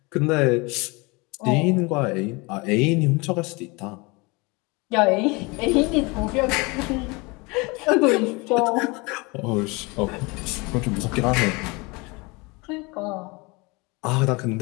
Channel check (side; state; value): right; quieter; 26.7 dB